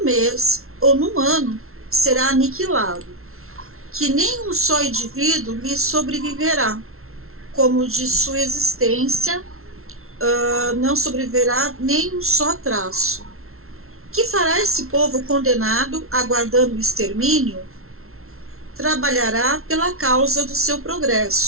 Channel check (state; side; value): late; left; 0.62 ms